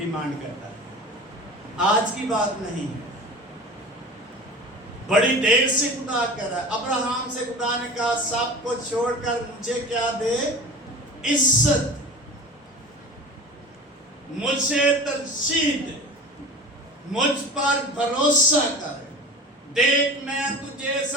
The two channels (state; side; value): normal; both; correlation 0.36